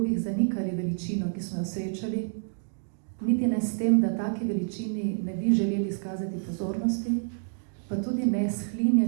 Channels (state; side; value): silent; left; digital silence